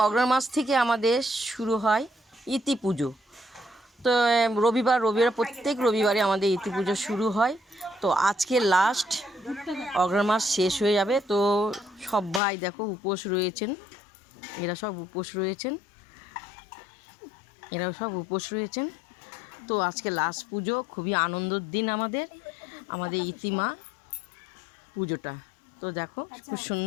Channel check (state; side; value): drops out; right; at 12.4 s